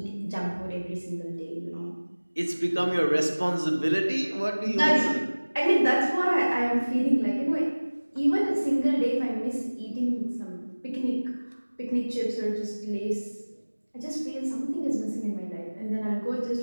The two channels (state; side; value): inverted; both; correlation -1.00